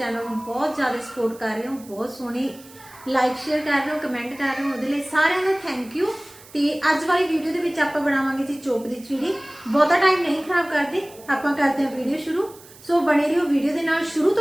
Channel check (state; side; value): noise; right; hiss, 22 dB below the sound